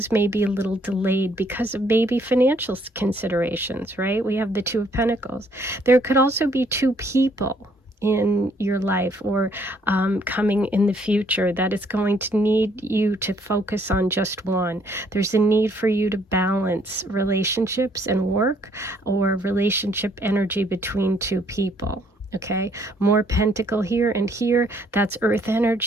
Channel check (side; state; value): both; normal; correlation 0.66